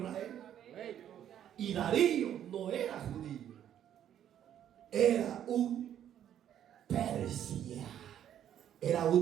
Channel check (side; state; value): left; quieter; 10.4 dB